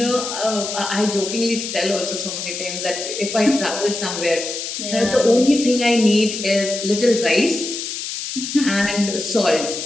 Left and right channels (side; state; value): left; noise; hiss, 6 dB below the sound